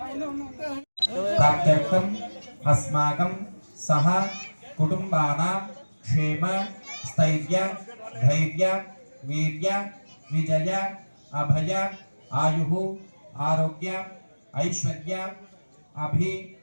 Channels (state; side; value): inverted; both; correlation -1.00